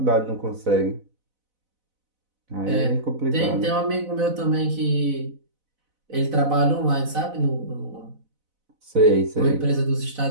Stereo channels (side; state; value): left; late; 4.0 ms